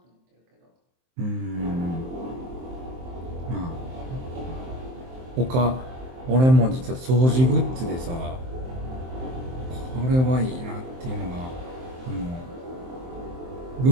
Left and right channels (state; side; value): late; left; 23 ms